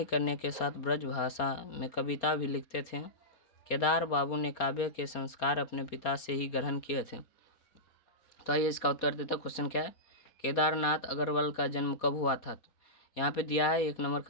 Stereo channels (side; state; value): right; late; 4.2 ms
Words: करने के साथ ब्रज भाषा में कविता भी लिखते थे। केदार बाबू ने काव्य के संस्कार अपने पिता से ही ग्रहण किए थे। तो आइए इसका उत्तर देता। क्वेश्चन क्या है, केदारनाथ अग्रवाल का जन्म कब हुआ था। तो यहाँ पे दिया है 1 नंबर